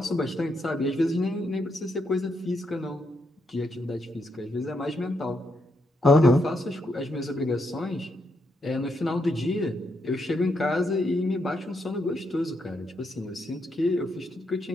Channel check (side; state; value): both; normal; correlation 0.79